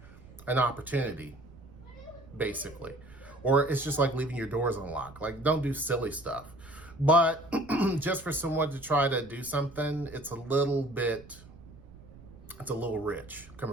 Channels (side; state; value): right; noise; rumble, 20 dB below the sound